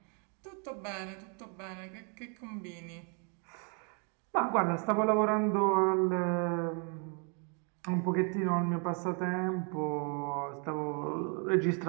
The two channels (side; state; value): left; quieter; 38.2 dB